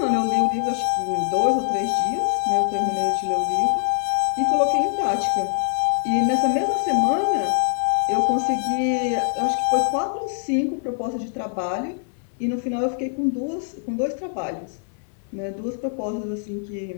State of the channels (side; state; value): right; silent; 63 dB below the other